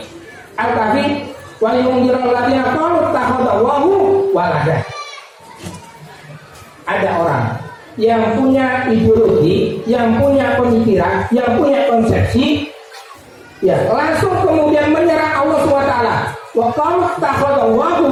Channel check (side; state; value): both; identical; correlation 1.00